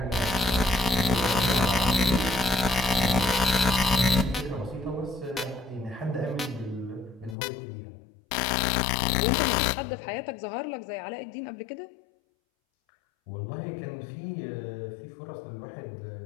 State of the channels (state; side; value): drops out; right; at 7.4 s